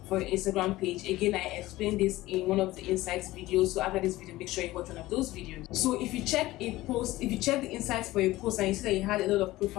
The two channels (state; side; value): quieter; right; 17.6 dB